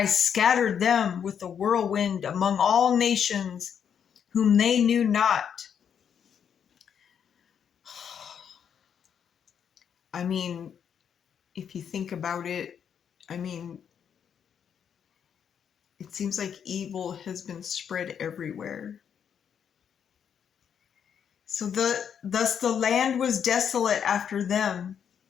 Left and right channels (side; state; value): right; quieter; 8.0 dB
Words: scattered them with a whirlwind among all nations, whom they knew not. I mean, if you think about it, I mean, it seems like evil has been spread everywhere. So thus the land was desolate after them,